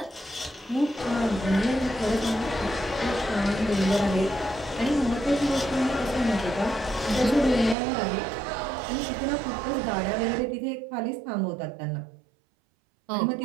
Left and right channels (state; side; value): drops out; left; at 7.8 s